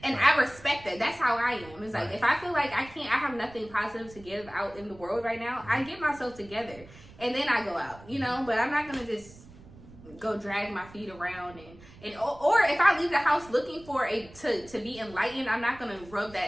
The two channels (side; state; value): right; noise; rumble, 21 dB below the sound